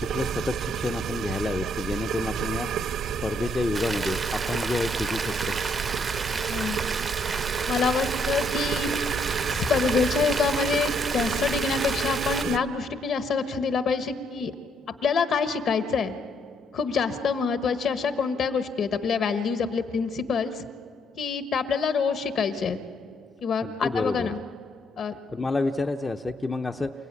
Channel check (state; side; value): normal; both; correlation 0.71